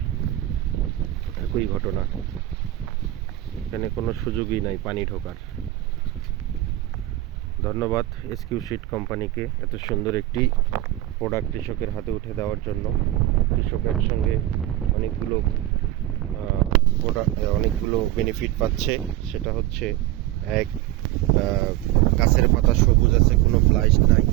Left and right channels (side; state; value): left; quieter; 15.2 dB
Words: একই ঘটনা। এখানে কোনো সুযোগই নাই পানি ঢোকার। ধন্যবাদ SQ-Seed কোম্পানিকে এত সুন্দর একটি প্রোডাক্ট কৃষকের হাতে উঠে দেওয়ার জন্য। কৃষকের সঙ্গে অনেকগুলো বেনিফিট পাচ্ছে। সেটা হচ্ছে এক, গাছের পাতা সবুজ আছে, কোনো ব্লাইট নাই,